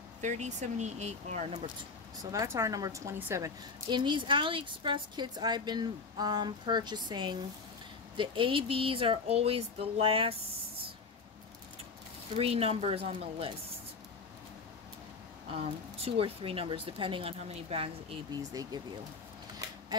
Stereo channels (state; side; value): quieter; right; 4.5 dB